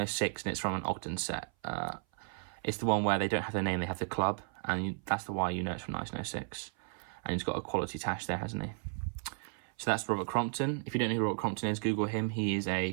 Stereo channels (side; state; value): left; silent; 55 dB below the other